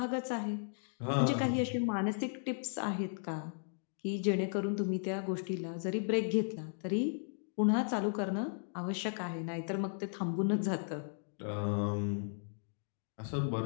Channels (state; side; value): silent; right; digital silence